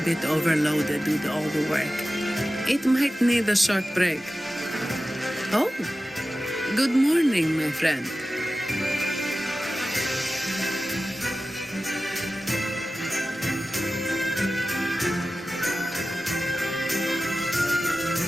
overloaded with all the work. It might need a short break. Oh, good morning, my friend.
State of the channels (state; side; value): normal; both; correlation 0.95